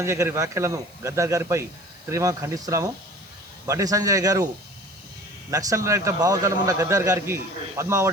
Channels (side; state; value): right; noise; hiss, 27 dB below the sound